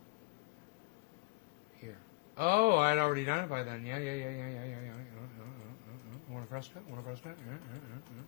Here. Oh, I'd already done it by then. Yeah. Want a fresco?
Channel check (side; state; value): right; quieter; 26.1 dB